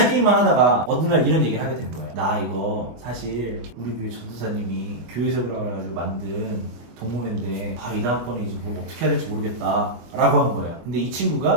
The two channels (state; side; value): late; left; 24 ms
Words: 게임만 하다가 어느 날 이런 얘기를 하게 된 거예요. 나 이거 사실 우리 교회 전도사님이 교회 세우라고 해가지고 만든 동호회인데 이 다음번에 이제 뭘 어떻게 해야 될지 모르겠다 라고 한 거야. 근데 이